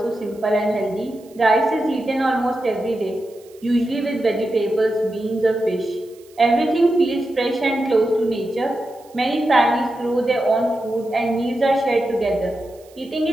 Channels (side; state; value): right; noise; hiss, 28 dB below the sound